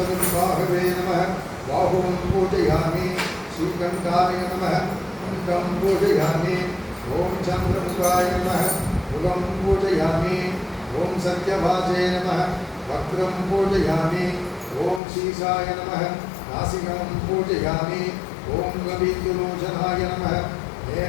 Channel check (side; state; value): right; drops out; at 15.0 s